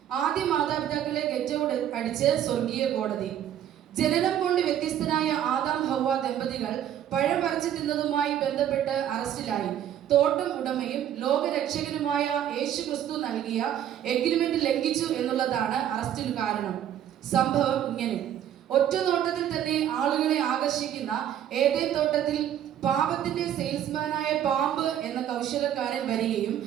ആദ്യ മാതാപിതാക്കളെ ഗെറ്റ് ഔട്ട് അടിച്ച് സ്വർഗീയ കോടതി. ജനനം കൊണ്ട് വ്യത്യസ്തനായ ആദാം ഹവ്വ ദമ്പതികൾ പഴം പറിച്ചു തിന്നതുമായി ബന്ധപ്പെട്ട് അറസ്റ്റിലായി. തോട്ടം ഉടമയും ലോകരക്ഷകനുമായ യേശുക്രിസ്തു നൽകിയ എഗ്രിമെന്റ് ലംഘിച്ചു എന്നുള്ളതാണ് അറസ്റ്റിന് കാരണം. സംഭവം ഇങ്ങനെ: ഒറ്റ നോട്ടത്തിൽ തന്നെ ആളുകളെ ആകർഷിക്കുന്ന ഏദൻ തോട്ടത്തിൽ പാപത്തിന്റെ സെയിൽസ്മാനായ പാമ്പ് എന്ന കൗശലക്കാരൻ വരികയും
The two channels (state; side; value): quieter; left; 10.6 dB